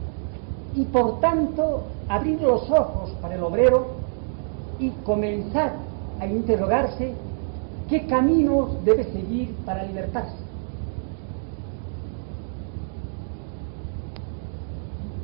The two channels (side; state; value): left; silent; digital silence